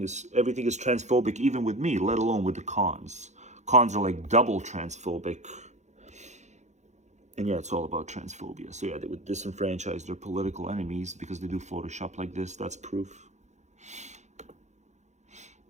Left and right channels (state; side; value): late; left; 0.34 ms